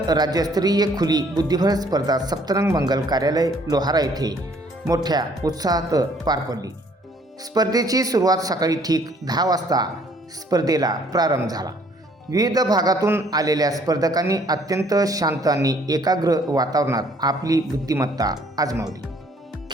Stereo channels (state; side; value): normal; both; correlation 0.61